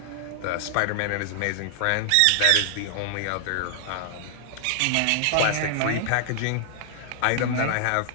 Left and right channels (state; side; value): different; both; correlation 0.00